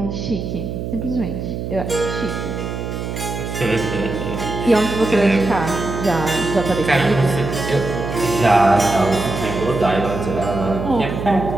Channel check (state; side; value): noise; right; hum, 5 dB below the sound